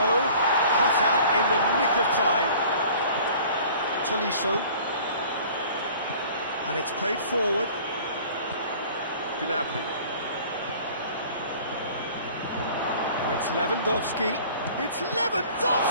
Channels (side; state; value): both; inverted; correlation -0.48